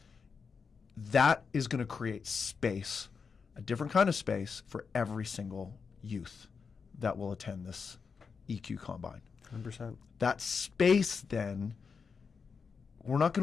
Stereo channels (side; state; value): right; quieter; 5.5 dB